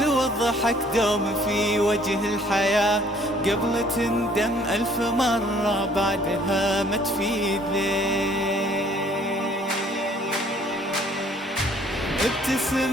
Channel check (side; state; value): both; normal; correlation 0.59